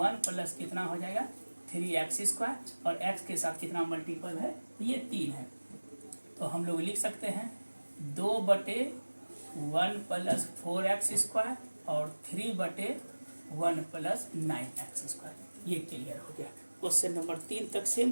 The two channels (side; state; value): both; inverted; correlation -1.00